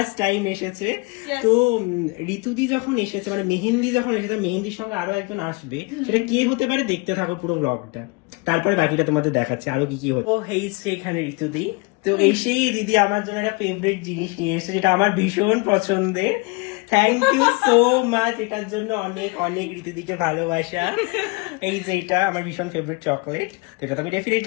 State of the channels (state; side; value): quieter; right; 27.9 dB